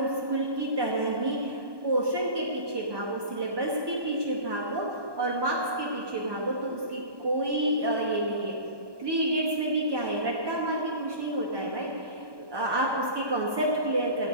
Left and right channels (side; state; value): left; late; 1.2 ms